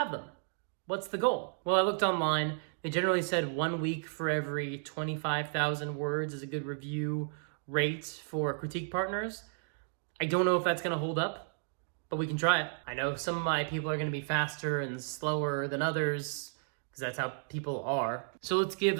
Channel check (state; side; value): silent; left; digital silence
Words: them? What's the goal? Well, I looked online. They generally said 1 week for every 25,000 words is a good review rate for critique partners. I don't know if that's going to hold up, but we can try it. I know some of my people are going to be faster and slower than others, because that's how people are. So let's give